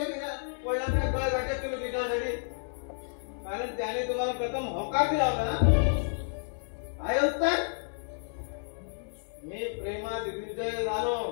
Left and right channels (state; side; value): silent; right; digital silence